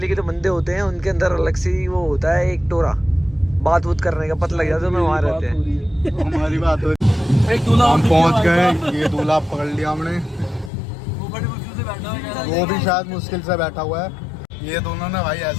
के जो बंदे होते हैं उनके अंदर अलग से वो होता है एक टोरा बात करने का, पता लग जाता है वहाँ रहते हैं। हमारी बात हो रही। हम पहुँच गए, ये दूल्हा पकड़ लिया हमने, वो भी शायद मुश्किल से बैठा हुआ है। ये दोनों ना भाई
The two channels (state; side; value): drops out; right; at 10.7 s